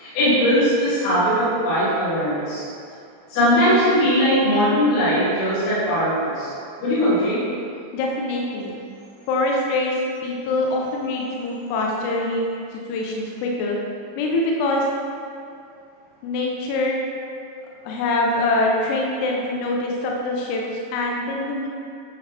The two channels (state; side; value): late; right; 36 ms